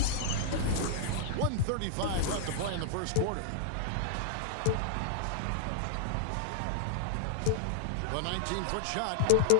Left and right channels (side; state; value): both; different; correlation -0.01